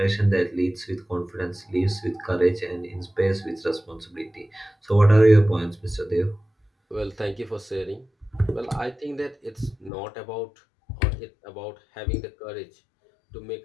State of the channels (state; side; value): drops out; right; at 9.9 s